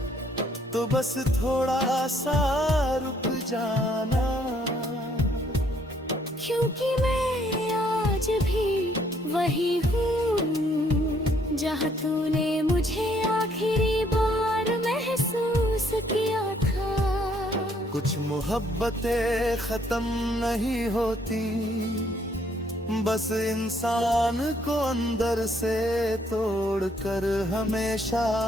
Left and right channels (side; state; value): both; normal; correlation 0.67